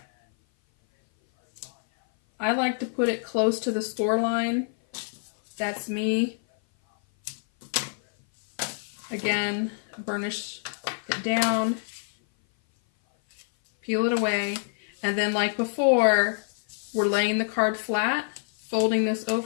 I like to put it close to the score line. That's me. Again, burnish it down, peel it away, and then like before, we're laying the card flat, folding this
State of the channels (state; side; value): silent; right; 57 dB below the other